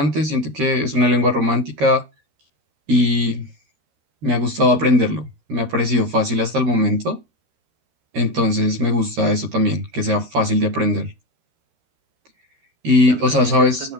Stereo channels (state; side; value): late; left; 13 ms